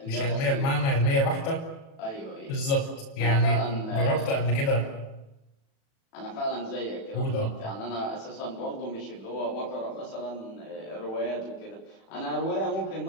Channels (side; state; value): right; late; 36 ms